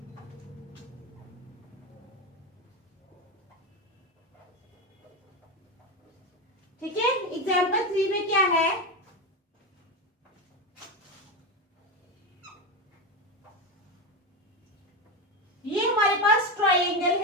ठीक है, एग्जाम्पल 3 में क्या है? ये हमारे पास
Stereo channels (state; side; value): normal; both; correlation 0.16